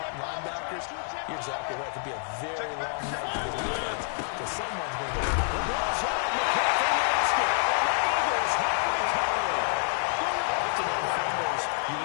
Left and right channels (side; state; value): right; silent; 56 dB below the other